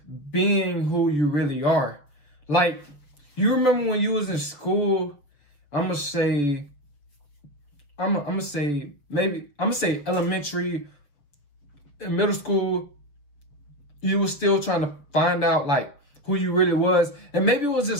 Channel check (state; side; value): late; right; 6.6 ms